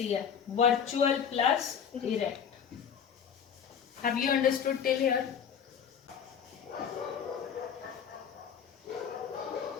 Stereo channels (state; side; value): quieter; right; 7.6 dB